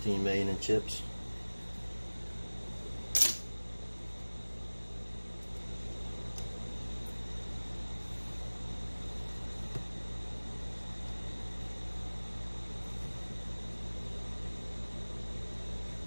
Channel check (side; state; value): both; inverted; correlation -1.00